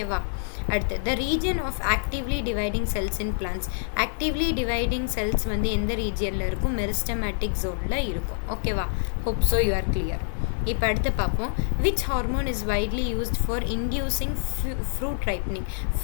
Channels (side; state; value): right; silent; digital silence